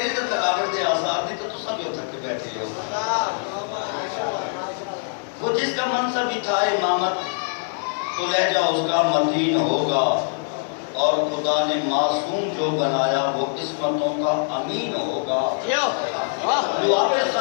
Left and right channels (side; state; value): right; silent; digital silence